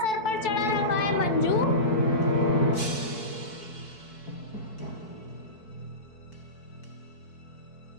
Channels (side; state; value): right; late; 4.6 ms